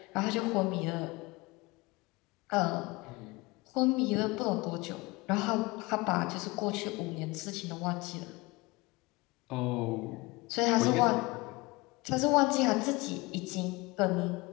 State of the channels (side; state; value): right; quieter; 23.2 dB